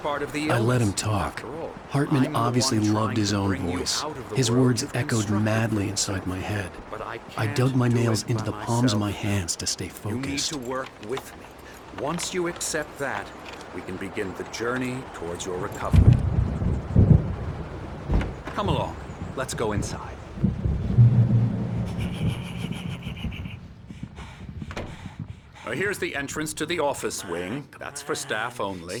of the illness. I let him talk. After all, Hartman I'm the obviously one loved trying his to own bring you voice. out of the His world words you've echoed constructed madly for inside my yourself. head. But I I can't dug my do nails it into by the palms of my myself. hands to stay You need focused. to work with me. Once you accept that, we can begin the journey towards your recovery. Come along. Let's go inside. Here's the entrance to the office wing. That's for staff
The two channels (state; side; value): identical; both; correlation 1.00